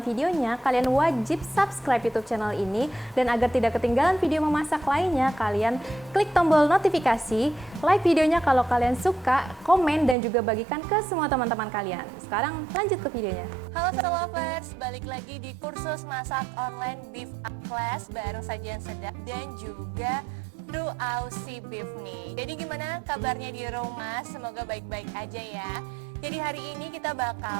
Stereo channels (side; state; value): left; drops out; at 10.2 s